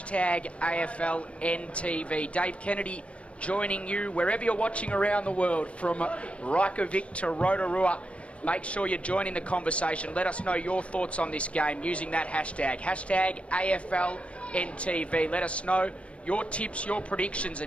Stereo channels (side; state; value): right; late; 0.062 ms